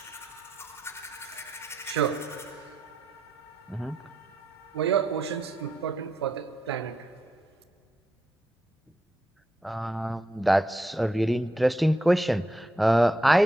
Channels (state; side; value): normal; both; correlation 0.82